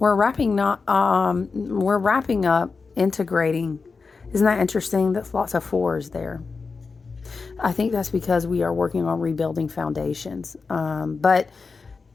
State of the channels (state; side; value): quieter; right; 4.6 dB